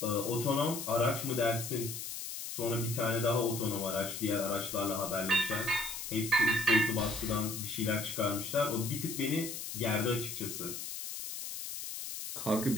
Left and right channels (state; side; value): noise; left; hiss, 7 dB below the sound